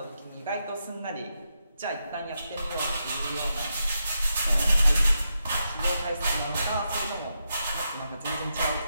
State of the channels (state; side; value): inverted; both; correlation -0.85